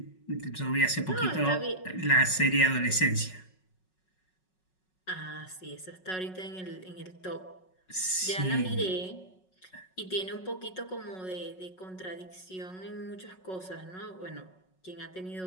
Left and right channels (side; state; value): right; late; 5.4 ms